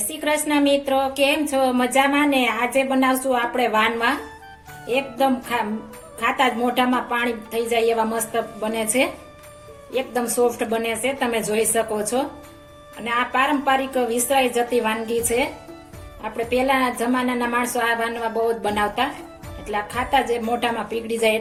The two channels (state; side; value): identical; both; correlation 1.00